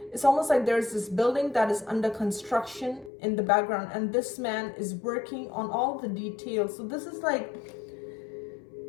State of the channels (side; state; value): right; drops out; at 3.1 s